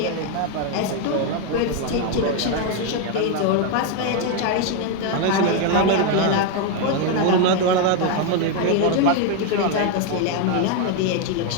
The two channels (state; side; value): different; both; correlation 0.01